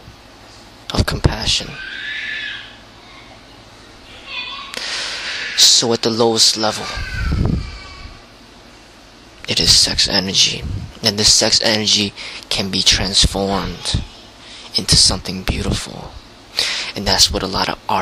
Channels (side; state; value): both; identical; correlation 1.00